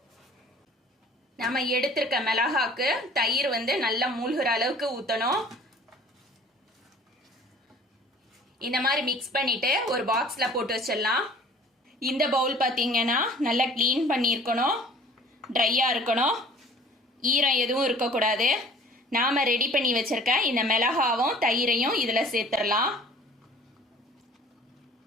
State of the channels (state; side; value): normal; both; correlation 0.50